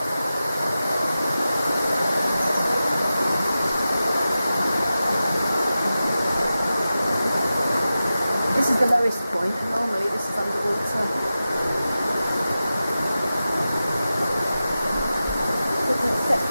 This is the lowest point, and normally this is underwater. It's an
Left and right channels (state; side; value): inverted; both; correlation -0.93